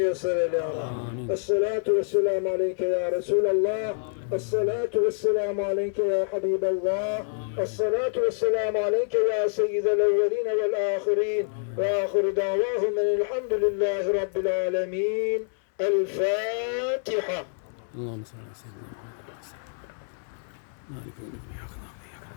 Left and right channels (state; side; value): silent; right; digital silence